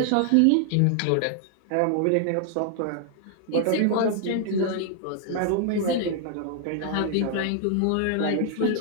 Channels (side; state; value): both; different; correlation 0.00